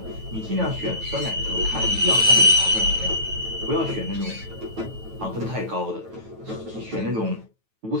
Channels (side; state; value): left; late; 9.1 ms